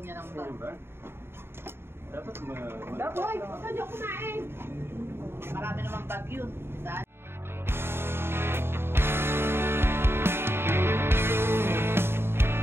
ng bag. Dapat Dapat. Hoy, huwag ka kumain. Marami namang bag yun. Saan?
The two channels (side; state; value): left; late; 0.11 ms